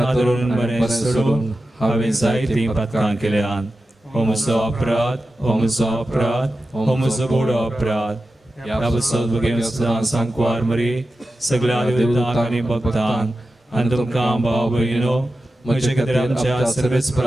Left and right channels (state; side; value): normal; both; correlation 0.92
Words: बरें सोडून हांवें जायतीं पातकां केल्यान हो म्हजो अपराध हो म्हजो अपराध हो म्हजो व्हडलो अपराध ह्या बसत बगेन सदां सांकवार मरी सगळ्या देवतांक आनी भक्तांक आनी तुमकां भाव भयणो म्हजे खातीर आमच्या